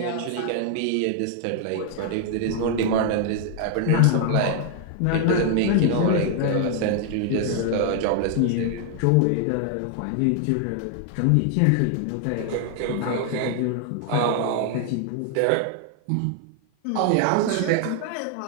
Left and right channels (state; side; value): different; both; correlation 0.00